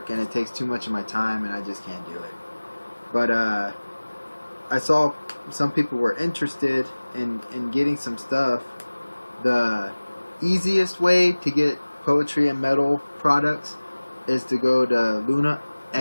and it takes too much of my time and I just can't do it. But I saw some people were interested in getting some stuff. The easiest way to get poetry and metal products is to go to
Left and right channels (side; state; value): both; inverted; correlation -1.00